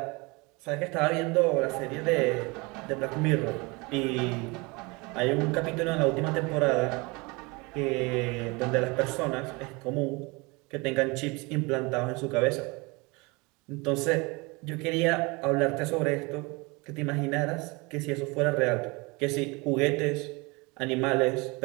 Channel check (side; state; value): left; quieter; 26.6 dB